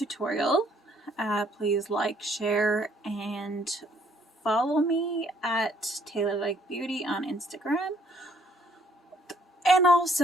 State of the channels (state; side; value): normal; both; correlation 0.64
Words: please like, share, and follow me at Taylor Like Beauty on Instagram. And